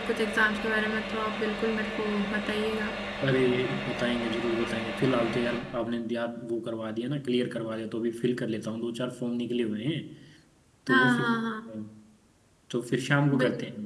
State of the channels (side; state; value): both; identical; correlation 1.00